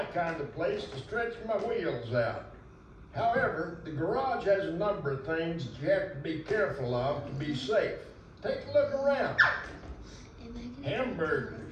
kind of place to stretch my wheels out. However, the garage has a number of things that you have to be careful of to be safe. Take a look around. Hamburgers.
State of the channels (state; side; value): identical; both; correlation 1.00